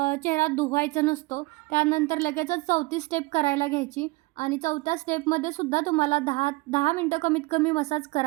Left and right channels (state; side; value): quieter; left; 23.9 dB